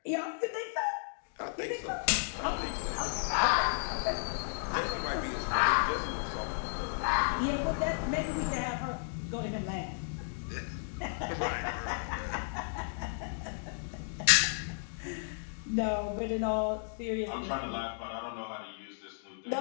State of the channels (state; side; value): silent; right; digital silence